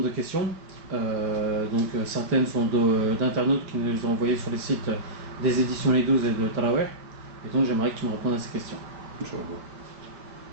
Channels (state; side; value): late; left; 4.9 ms